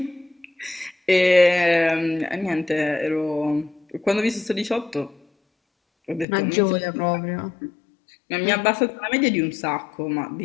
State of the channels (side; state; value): right; drops out; at 6.2 s